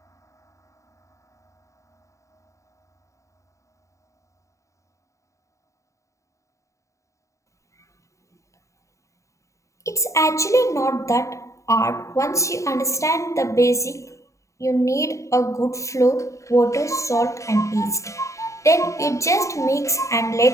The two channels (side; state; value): right; late; 0.15 ms